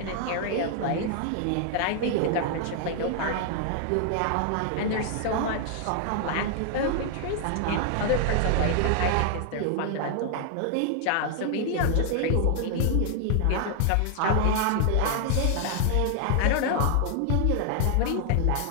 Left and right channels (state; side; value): different; both; correlation 0.00